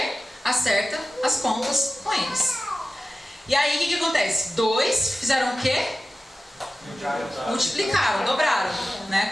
Acerta as contas com eles. E aí, o que acontece? 2 fizeram o quê? Multiplicaram, dobraram, né, a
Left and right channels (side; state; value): both; normal; correlation 0.95